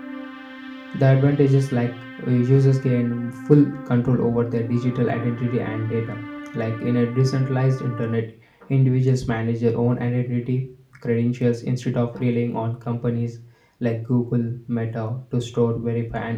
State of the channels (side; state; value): both; identical; correlation 1.00